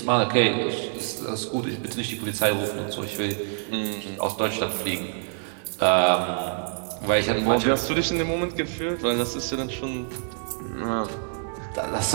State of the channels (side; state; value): left; silent; 61 dB below the other